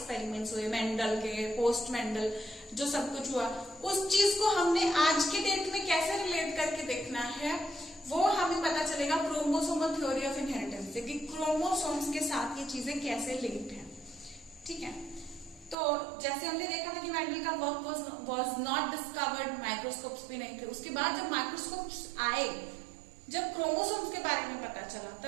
हुए मेंडल के, पोस्ट मेंडल, जो सब कुछ हुआ, उस चीज को हमने आज के डेट में कैसे रिलेट करके देखना है, वो हमें पता चलेगा क्रोमोसोमल थ्योरी ऑफ इनहेरिटेंस से, कि क्रोमोसोम्स के साथ ये चीजें कैसे लिंक्ड है। ठीक है, तो जैसे हमने देखा था कि मेंडल का work was not discovered, microscopes भी नहीं थे। उसके बाद जब माइक्रोस्कोप्स आए, जब क्रोमोसोम्स के बारे में पता चला,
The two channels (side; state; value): left; drops out; at 15.8 s